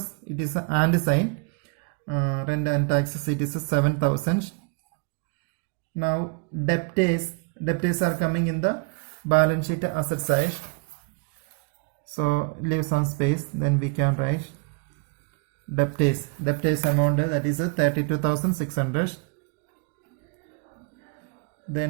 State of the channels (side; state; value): left; quieter; 32.8 dB